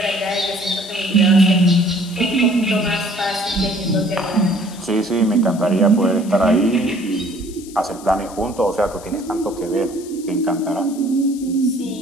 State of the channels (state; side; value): noise; left; hiss, 19 dB below the sound